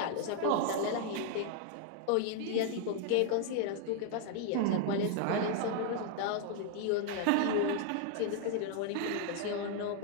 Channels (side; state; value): both; different; correlation 0.00